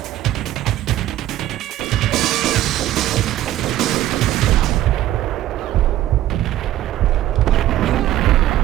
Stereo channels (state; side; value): quieter; left; 13.6 dB